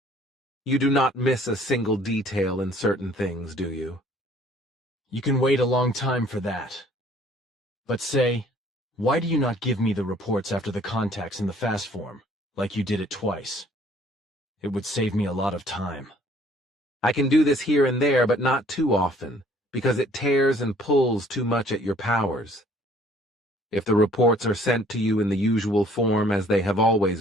You do not miss a single detail in certain things, do you? You can wait a long time for that. But say, why do you not give me the reports after the contacts in the fast form, like you did it twice? It would save me a lot of time. I can do this here and there, but not too often, because it tears and pulls too much at your powers. If the reports are sent to you in the usual form as they have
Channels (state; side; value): normal; both; correlation 0.58